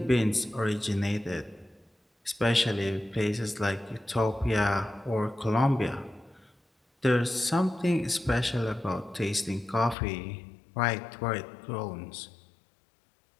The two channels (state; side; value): drops out; right; at 10.0 s